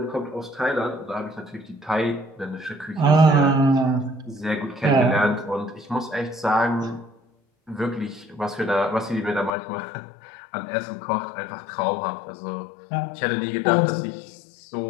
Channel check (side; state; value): right; drops out; at 9.5 s